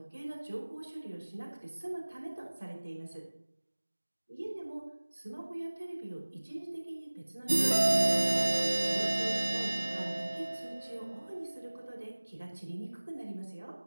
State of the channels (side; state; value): both; inverted; correlation -1.00